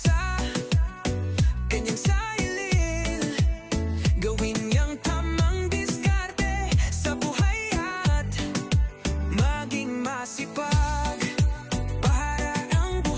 kanyang sarili. Gawin niyang tamang diskarte sa buhay at maging masipag para ang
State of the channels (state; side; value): identical; both; correlation 1.00